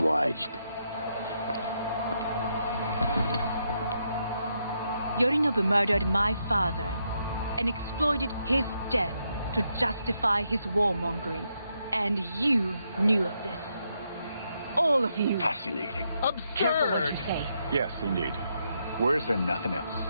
Yorinobu murdered my father and exploited his death to justify his warmongering. And you knew of this. All of you. Fascinating. Absurd. Careful what you say. Yes, indeed. Worse than nothing else.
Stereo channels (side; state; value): both; inverted; correlation -0.79